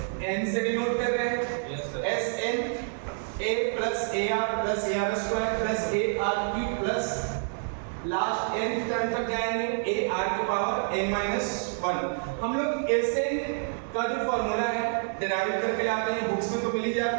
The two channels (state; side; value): silent; left; 59 dB below the other